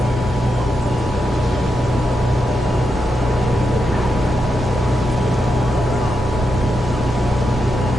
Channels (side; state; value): both; normal; correlation 0.85